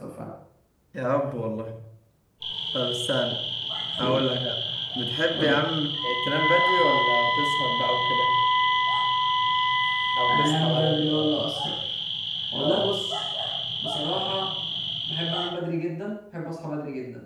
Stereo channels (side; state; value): both; identical; correlation 1.00